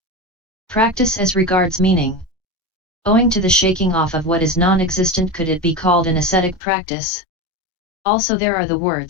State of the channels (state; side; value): drops out; right; at 6.6 s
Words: practice as regards meaning. Owing to the shaking off of what is non-existent, could it be called an ascetic practice? Also there are the